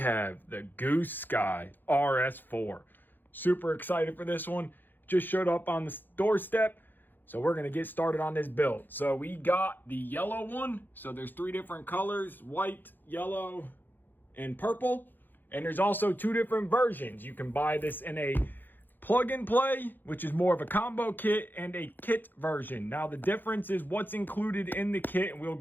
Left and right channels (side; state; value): right; late; 0.090 ms